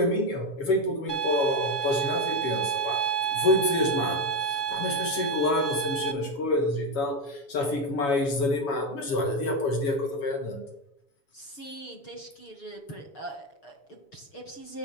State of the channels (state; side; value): late; right; 7.1 ms